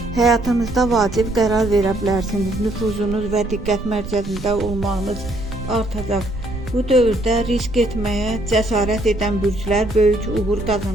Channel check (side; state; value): right; noise; rumble, 10 dB below the sound